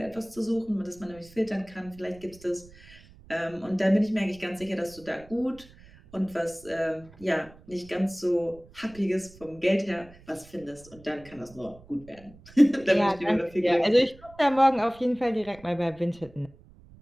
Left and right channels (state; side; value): noise; right; rumble, 23 dB below the sound